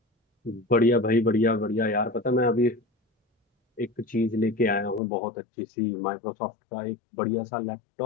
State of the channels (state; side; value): drops out; right; at 5.0 s